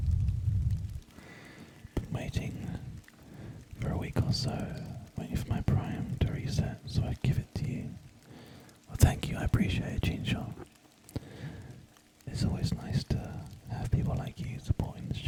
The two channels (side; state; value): both; identical; correlation 1.00